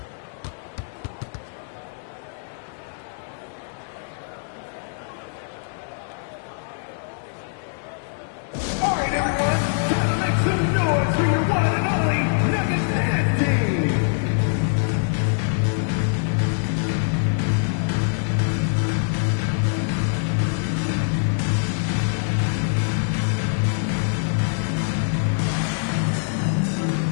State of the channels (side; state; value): right; silent; digital silence